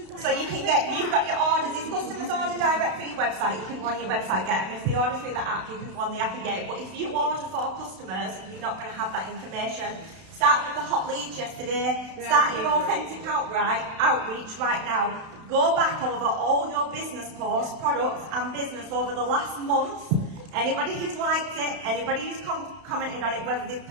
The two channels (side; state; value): left; late; 32 ms